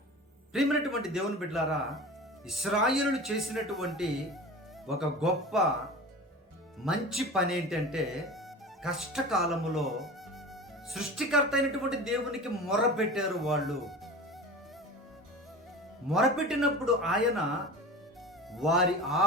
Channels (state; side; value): normal; both; correlation 0.34